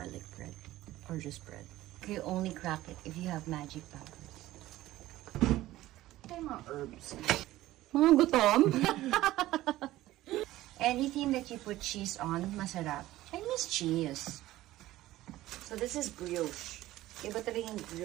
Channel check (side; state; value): left; quieter; 15.9 dB